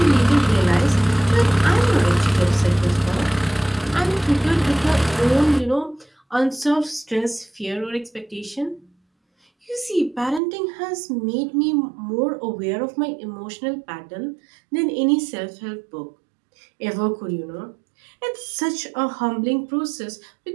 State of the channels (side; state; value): left; drops out; at 10.4 s